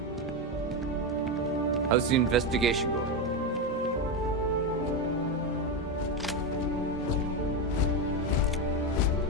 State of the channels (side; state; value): both; normal; correlation 0.11